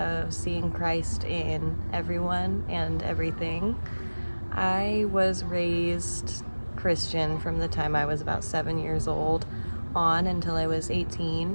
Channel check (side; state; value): both; inverted; correlation -1.00